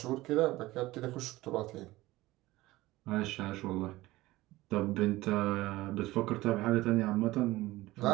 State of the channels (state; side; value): quieter; left; 18.3 dB